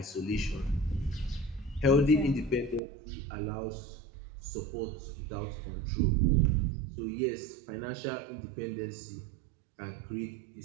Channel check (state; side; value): drops out; left; at 2.8 s